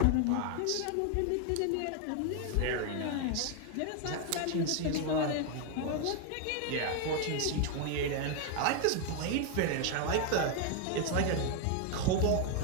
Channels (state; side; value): different; both; correlation 0.01